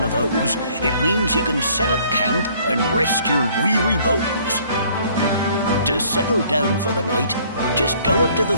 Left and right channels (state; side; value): inverted; both; correlation -0.59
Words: of those, it means you can set up camp and rest your weary bones. To settle down for the night, just go up to the